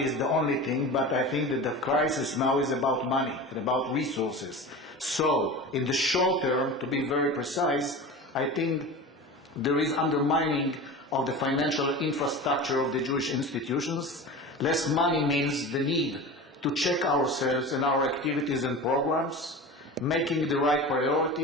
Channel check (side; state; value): both; normal; correlation 0.32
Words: is the only thing, but I think that the crisis now is about money and about resources. So, in the short term, to be very precise, I think there is undermining of the financial infrastructure of the Jewish institutions. Less money means the need to check ourselves and our activities and programs, making the right